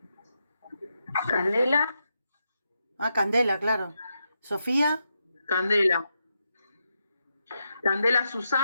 Candela. Ah, Candela, claro. Sofía. Candela. Candela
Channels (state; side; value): inverted; both; correlation -0.84